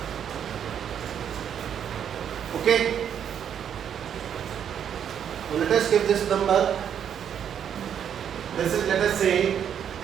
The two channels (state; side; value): quieter; left; 8.7 dB